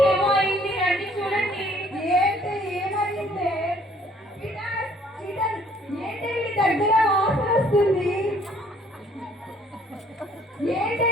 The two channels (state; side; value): normal; both; correlation 0.60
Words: ఏమో అయింది, రండి చూడండి. ఏంటి ఏమైంది? ఏంటి వీడి దగ్గర వాసన వస్తుంది? ఏంటి